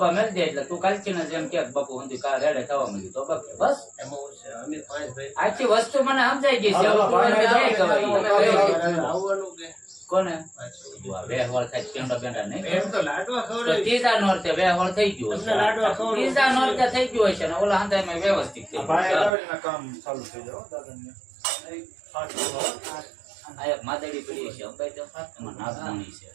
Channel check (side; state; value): left; drops out; at 19.3 s